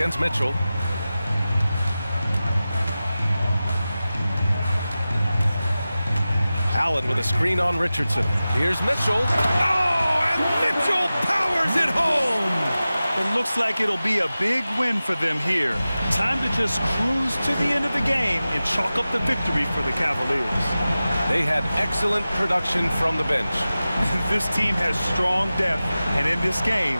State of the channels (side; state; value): both; inverted; correlation -0.95